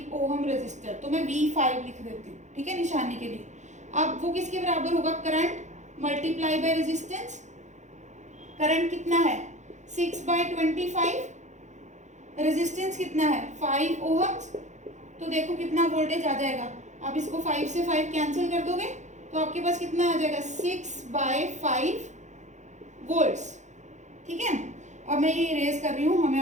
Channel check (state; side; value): late; left; 0.34 ms